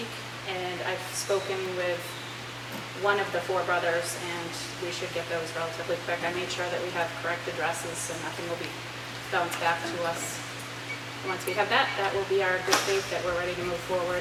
and I've spoken with one of the 4 brothers, and we should get those relatively quick. I made sure that we have correct addresses, so nothing will be bounced back to us. And once we have that, that will be our good faith that we're ready to move forward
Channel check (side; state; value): both; identical; correlation 1.00